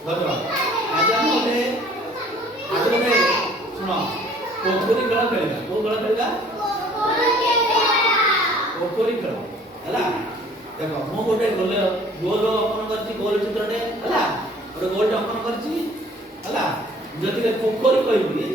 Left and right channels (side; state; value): both; normal; correlation 0.54